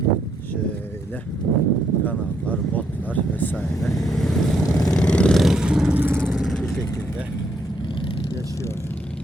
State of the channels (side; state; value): both; normal; correlation 0.74